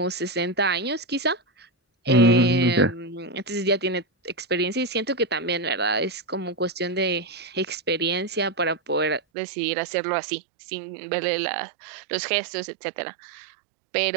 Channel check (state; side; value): drops out; left; at 9.2 s